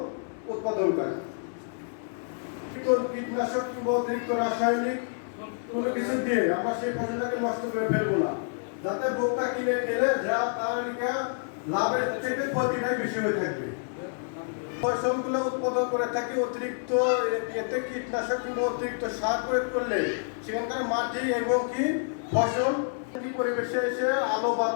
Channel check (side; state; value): right; silent; digital silence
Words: উৎপাদন করা, কীটনাশক কিংবা অতিরিক্ত রাসায়নিক কোনো কিছু দিয়ে আমরা সেই ফসলটাকে নষ্ট করে ফেলবো না, যাতে ভোক্তা কিনে খেলে যা তার লাভের থেকে ক্ষতিটাই বেশি হয়ে থাকবে। ফসলগুলো উৎপাদন করে থাকি অতিরিক্ত এতে কীটনাশক কিংবা অতিরিক্ত সার প্রয়োগ করলে সেখানকার মাটি এবং কি ফসল পরিবেশে এসে আলো